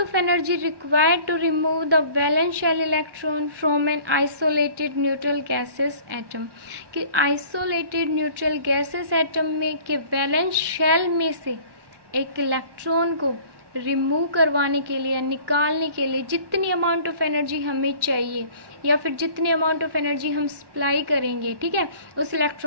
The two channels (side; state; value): left; late; 1.1 ms